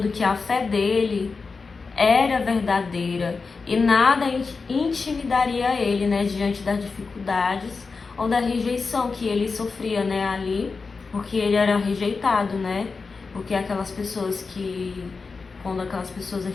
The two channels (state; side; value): quieter; right; 4.5 dB